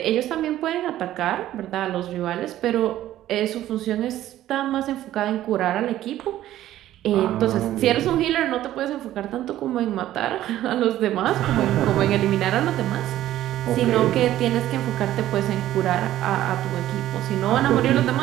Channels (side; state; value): left; quieter; 13.5 dB